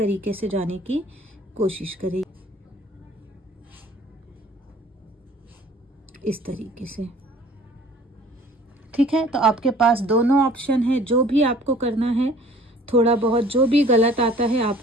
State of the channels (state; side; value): normal; both; correlation 0.52